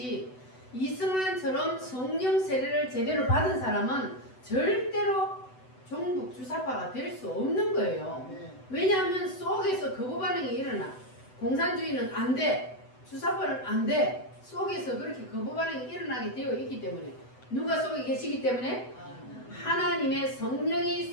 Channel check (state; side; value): late; right; 7.9 ms